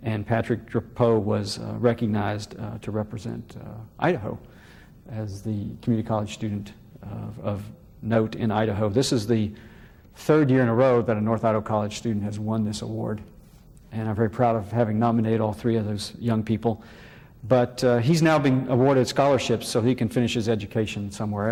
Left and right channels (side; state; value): both; identical; correlation 1.00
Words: And Patrick Drapeau was recognized to represent Idaho as the community college student of note in Idaho. This is the 3rd year in a row that a North Idaho College student has won this award. And I'm very proud of having nominated all 3 of those young people. But he's now being awarded scholarships so he can finish his education somewhere